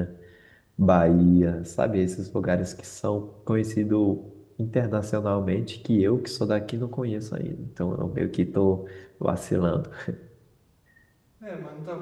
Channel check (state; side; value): identical; both; correlation 1.00